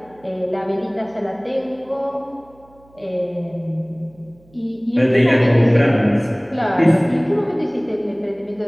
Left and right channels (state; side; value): noise; right; hum, 29 dB below the sound